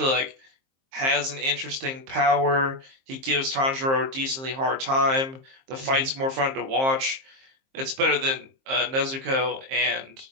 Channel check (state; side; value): late; left; 23 ms